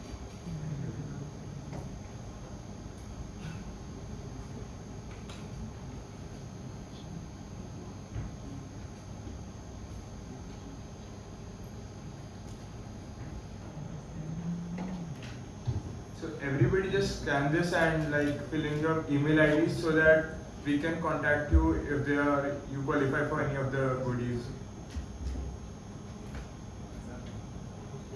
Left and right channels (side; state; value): both; identical; correlation 1.00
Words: So everybody just scan this and like fill in your email ID so that we can contact you if you qualify for any of the goodies.